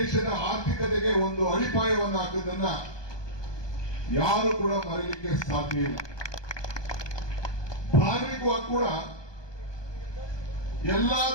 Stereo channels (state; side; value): late; right; 1.2 ms